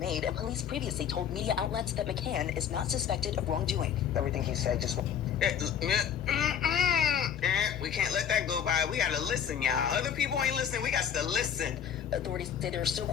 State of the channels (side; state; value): right; quieter; 8.6 dB